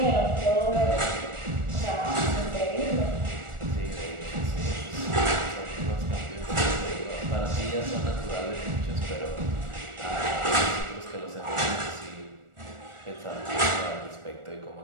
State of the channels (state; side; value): late; left; 1.4 ms